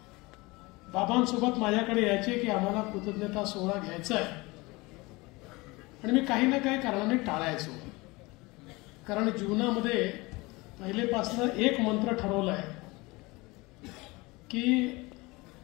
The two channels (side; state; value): right; quieter; 23.5 dB